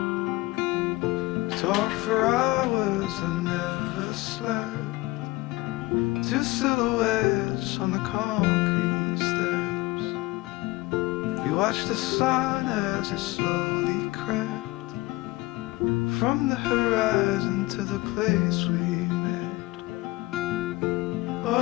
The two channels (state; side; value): quieter; right; 20.7 dB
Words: Talk for hours and never slept. Two silhouettes on the concrete steps. We watched the sun as it slowly crept from the horizon to the place we met.